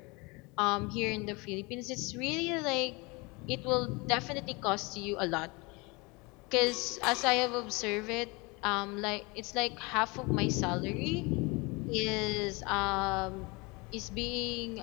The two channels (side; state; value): right; quieter; 26.9 dB